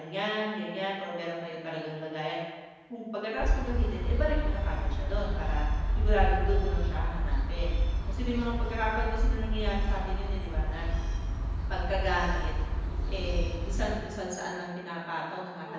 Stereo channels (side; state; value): both; identical; correlation 1.00